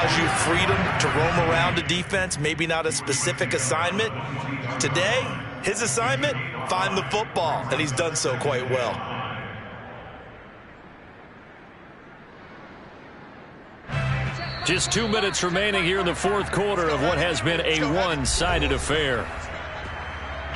you freedom to roam around a defense, maybe not a specific assignment. Today, his assignment, find the football, and he's done so quite well. Just 2 minutes remaining here in the fourth quarter of what has been a one-sided affair.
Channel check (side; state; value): both; identical; correlation 1.00